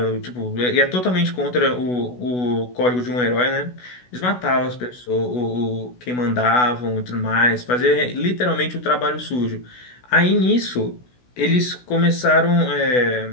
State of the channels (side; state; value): right; late; 16 ms